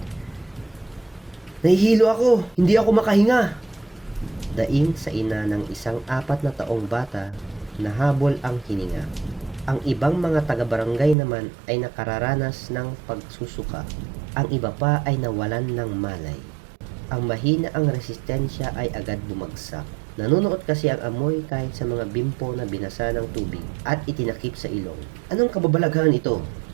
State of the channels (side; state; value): left; drops out; at 11.2 s